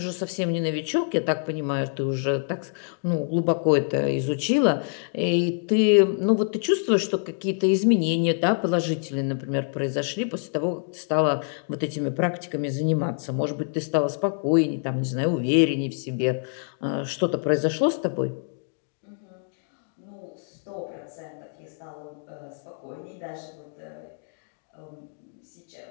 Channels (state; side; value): silent; right; 61 dB below the other